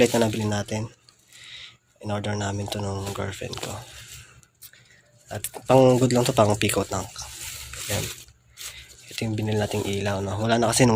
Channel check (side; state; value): both; identical; correlation 1.00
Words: na nabili natin. In-order namin to nung girlfriend ko. At pang good lang to, pang pico tank. Yan. Ito yung binili nating ilaw, no? Wala na kasi